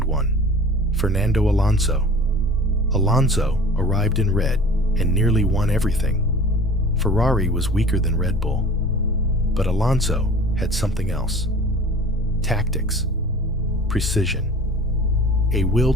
one, Fernando Alonso. Alonso arrived in red and nearly won everything. Ferrari was weaker than Red Bull, but Alonso had something else. Tactics, precision, a will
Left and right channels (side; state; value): both; normal; correlation 0.43